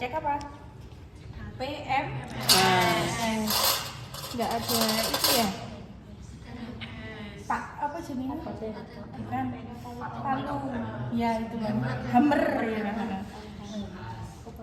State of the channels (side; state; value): both; identical; correlation 1.00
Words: apa? PMS. Nggak ada itu ya? Pak apa jenisnya? Bukan palu. Ya itu loh. Hammer ya.